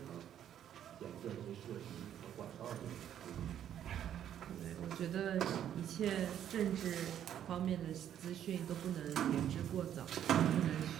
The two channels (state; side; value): quieter; left; 10.2 dB